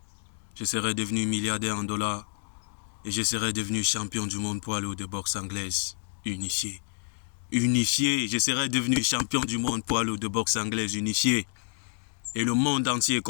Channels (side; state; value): right; silent; digital silence